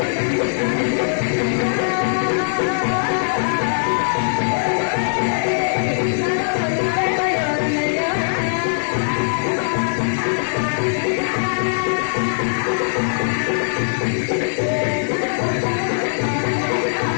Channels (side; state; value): right; silent; digital silence